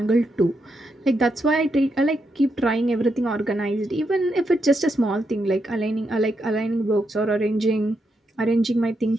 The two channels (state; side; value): normal; both; correlation 0.82